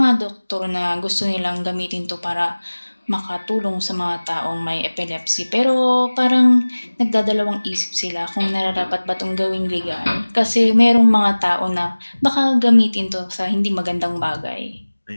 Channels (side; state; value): both; inverted; correlation -1.00